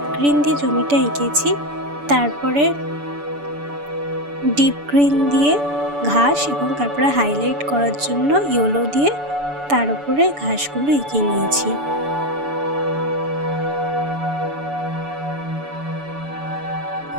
গ্রিন দিয়ে জমিটা এঁকেছি, তারপরে ডিপ গ্রিন দিয়ে ঘাস এবং তারপরে হাইলাইট করার জন্য ইয়েলো দিয়ে তার উপরে ঘাসগুলো এঁকে নিয়েছি।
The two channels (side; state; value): left; late; 6.9 ms